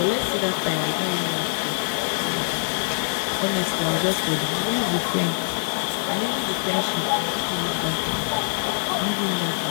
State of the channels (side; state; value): right; silent; 63 dB below the other